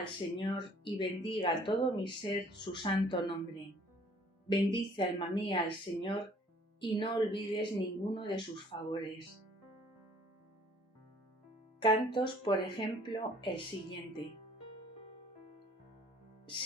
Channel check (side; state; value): both; normal; correlation 0.57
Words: Señor, y bendiga todo mi ser su santo nombre. Bendice, alma mía, al Señor, y no olvides ninguno de sus favores. Cantos, por ejemplo, el siguiente.